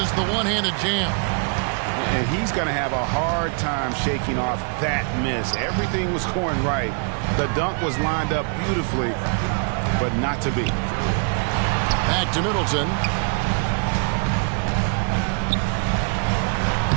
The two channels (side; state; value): left; quieter; 39.8 dB